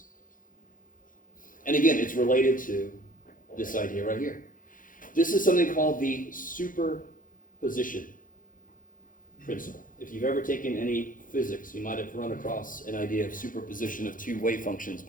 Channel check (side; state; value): right; late; 0.39 ms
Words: And again, it's related to this idea right here. This is something called the superposition principle. If you've ever taken any physics, you might have run across an idea of superposition of two wave functions,